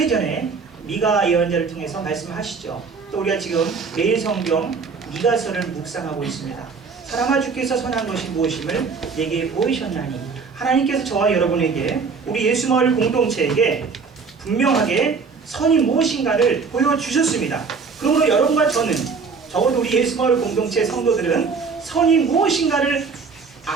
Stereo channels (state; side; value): quieter; left; 5.1 dB